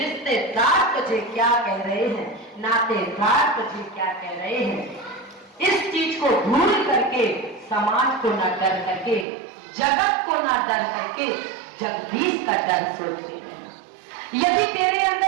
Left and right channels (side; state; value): left; drops out; at 9.2 s